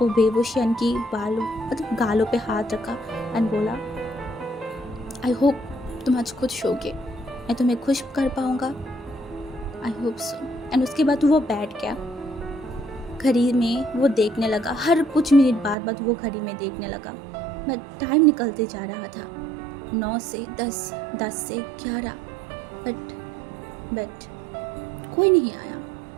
बेहोश की गालों पे हाथ रखा एंड बोला आई होप तुम आज खुश होगे, मैं तुम्हें खुश कर पाऊँगा, आई होप सो। एंड उसके बाद वो बैठ गया, घड़ी में वो देखने लगा, हर कुछ मिनट बाद वो घड़ी में देखने लगा, बट टाइम निकलते जा रहा था, 9 से 10, 10 से 11, बट कोई नहीं आया,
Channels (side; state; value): left; drops out; at 15.8 s